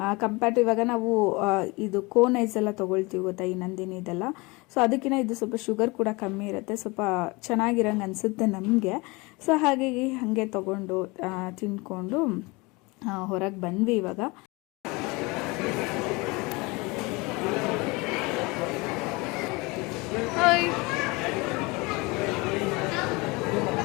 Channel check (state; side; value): quieter; right; 25.4 dB